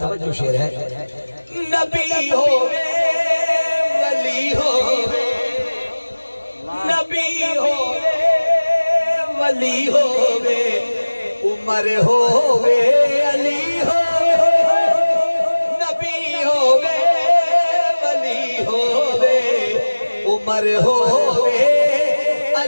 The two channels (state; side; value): inverted; both; correlation -1.00